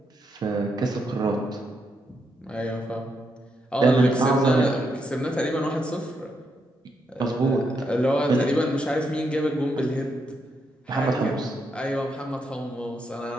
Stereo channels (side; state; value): both; normal; correlation 0.80